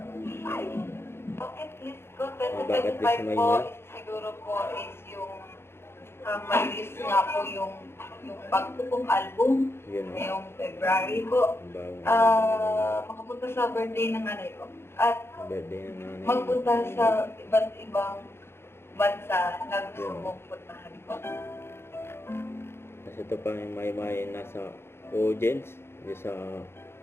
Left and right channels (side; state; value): right; late; 0.12 ms